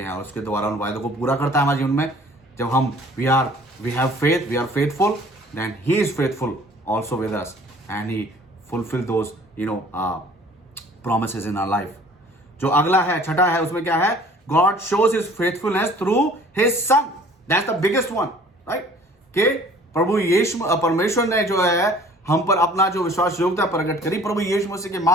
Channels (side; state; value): both; normal; correlation 0.52